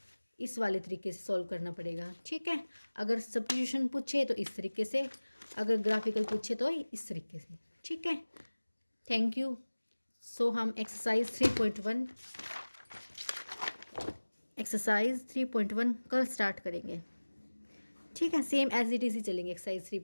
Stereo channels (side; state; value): both; inverted; correlation -1.00